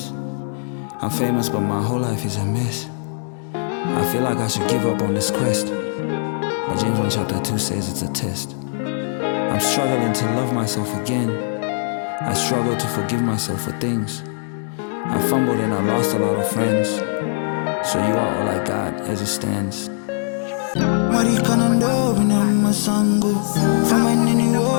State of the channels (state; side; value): silent; right; digital silence